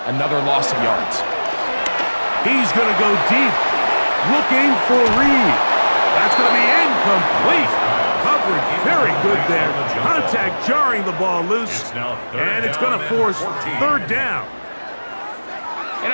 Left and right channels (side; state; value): both; inverted; correlation -1.00